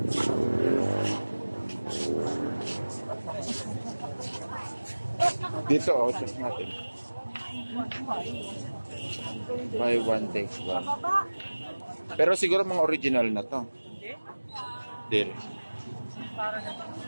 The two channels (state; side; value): inverted; both; correlation -1.00